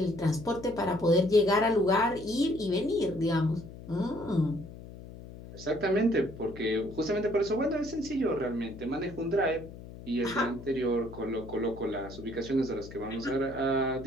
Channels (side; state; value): left; noise; hum, 15 dB below the sound